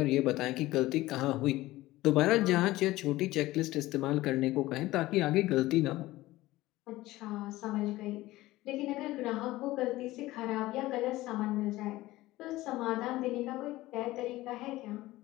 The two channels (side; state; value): right; quieter; 17.6 dB